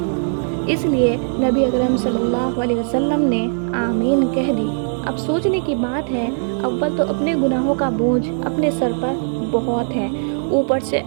اس لیے نبی اکرم صلی اللہ علیہ وسلم نے آمین کہہ دی۔ اب سوچنے کی بات ہے، اول تو اپنے گناہوں کا بوجھ اپنے سر پر بہت ہے، اوپر سے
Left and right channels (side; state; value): left; silent; digital silence